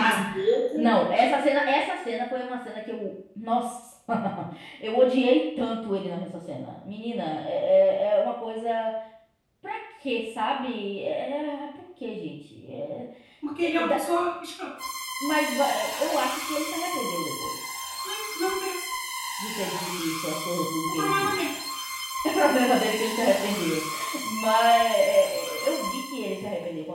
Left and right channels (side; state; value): both; identical; correlation 1.00